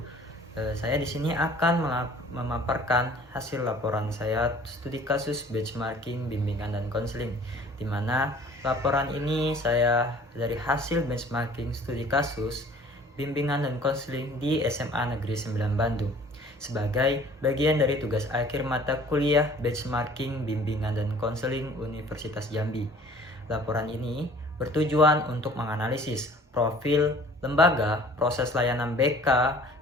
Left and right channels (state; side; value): normal; both; correlation 0.50